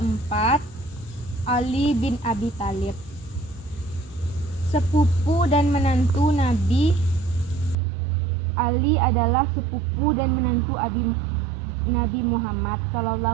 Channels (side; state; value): left; drops out; at 7.8 s